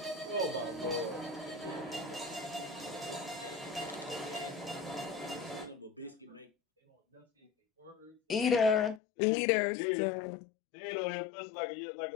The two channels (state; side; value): drops out; right; at 9.0 s